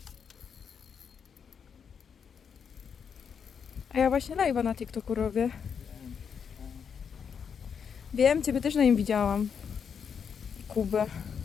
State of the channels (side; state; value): right; quieter; 6.9 dB